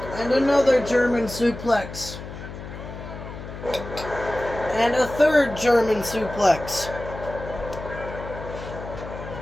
And another German suplex. And a third German suplex.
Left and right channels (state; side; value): noise; left; hum, 11 dB below the sound